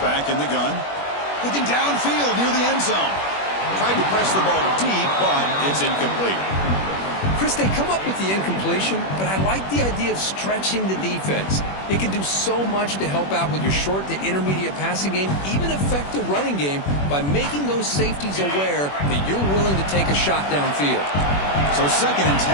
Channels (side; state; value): right; late; 21 ms